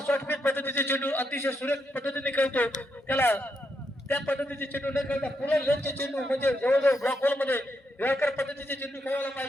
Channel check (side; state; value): both; normal; correlation 0.80